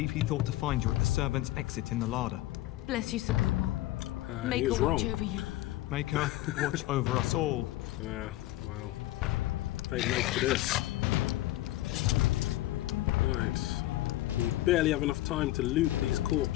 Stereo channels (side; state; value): right; quieter; 16.5 dB